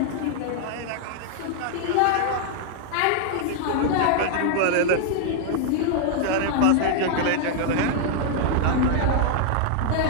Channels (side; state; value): both; different; correlation 0.00